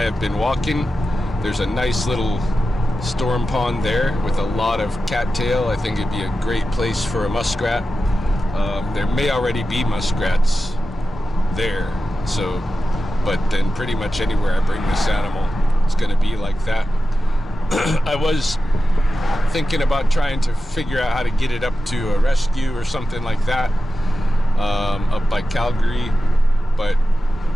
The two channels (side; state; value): both; normal; correlation 0.92